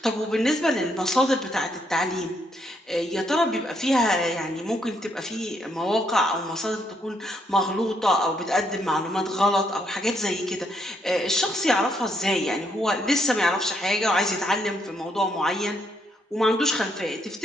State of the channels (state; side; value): normal; both; correlation 0.75